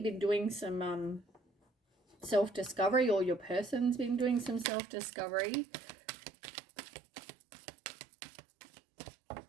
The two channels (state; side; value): drops out; left; at 4.7 s